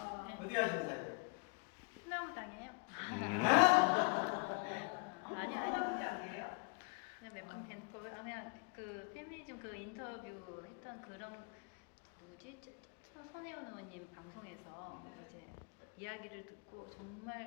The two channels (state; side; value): quieter; right; 33.7 dB